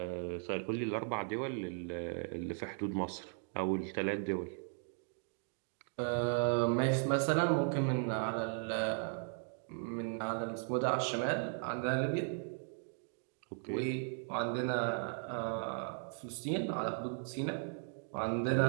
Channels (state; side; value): silent; left; 53 dB below the other